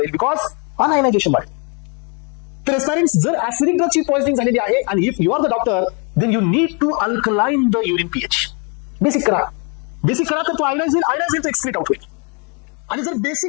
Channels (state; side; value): quieter; right; 34.9 dB